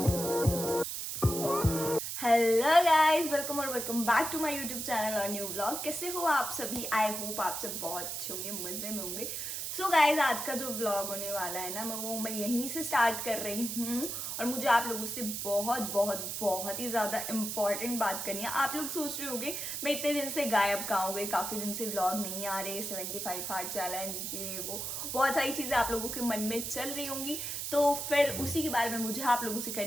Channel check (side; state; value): right; noise; hiss, 4 dB below the sound